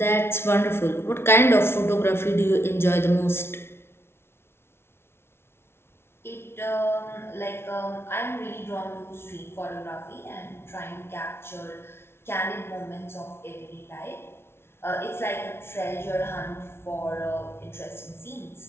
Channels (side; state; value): right; late; 0.12 ms